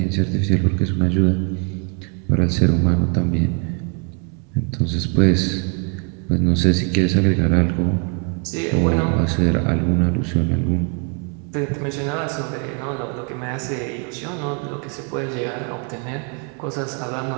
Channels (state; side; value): quieter; left; 36.9 dB